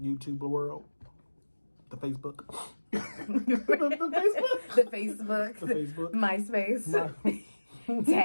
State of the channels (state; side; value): inverted; both; correlation -1.00